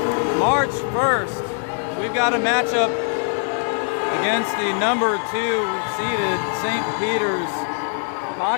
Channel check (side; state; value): right; silent; 59 dB below the other